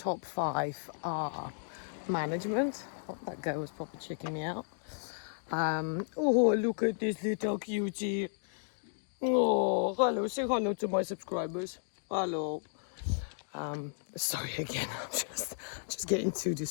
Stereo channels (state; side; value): silent; right; digital silence